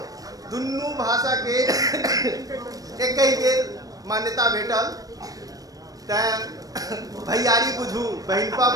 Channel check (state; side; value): late; left; 0.18 ms